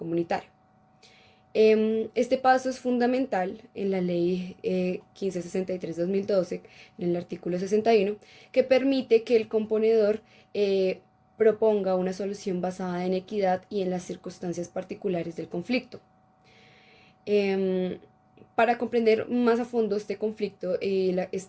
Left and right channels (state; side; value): identical; both; correlation 1.00